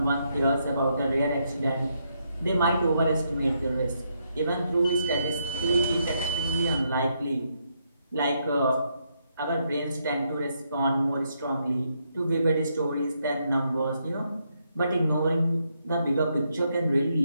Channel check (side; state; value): both; inverted; correlation -0.78